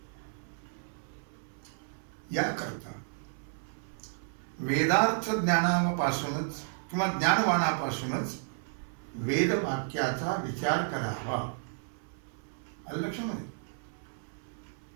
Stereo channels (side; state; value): left; silent; 56 dB below the other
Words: याकरता वेदार्थ ज्ञानापासूनच किंवा ज्ञानवानापासूनच वेदवाक्याचा विचार करावा. आलं लक्षामध्ये?